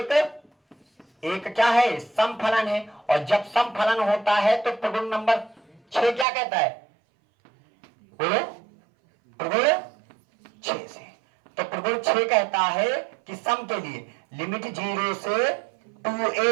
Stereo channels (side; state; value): left; drops out; at 6.2 s